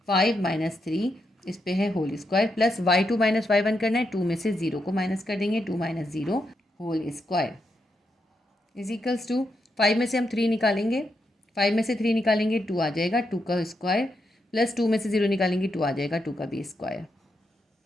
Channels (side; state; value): both; normal; correlation 0.83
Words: 5 माइनस 3 इस पे है whole square plus y2 minus y1 करना है। 2 में से 0 को माइनस कर देंगे, 2 minus 0 whole square is equals to 5 में से हम 3 निकालेंगे, 5 में से 3 निकालेंगे 2 आ जाएगा, 2 का स्क्वायर प्लस 2 में से 0 निकालेंगे 2 आ जाएगा, 2 का भी स्क्वायर।